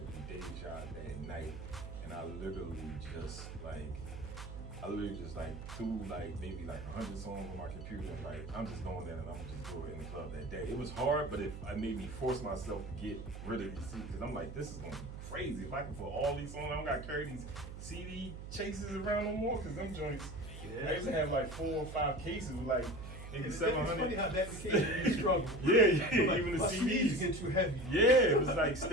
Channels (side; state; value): right; noise; hum, 10 dB below the sound